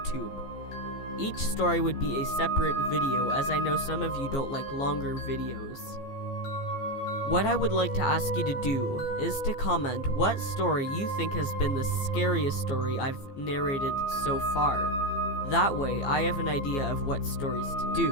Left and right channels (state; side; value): late; right; 15 ms